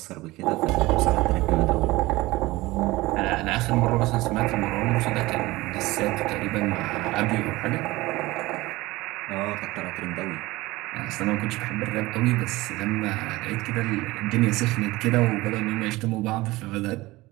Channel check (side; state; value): left; quieter; 19.9 dB